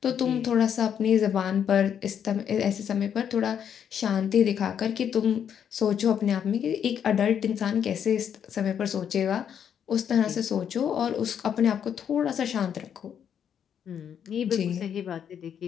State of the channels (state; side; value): quieter; right; 8.5 dB